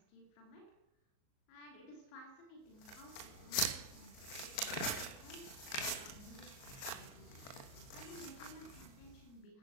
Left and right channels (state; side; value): late; right; 38 ms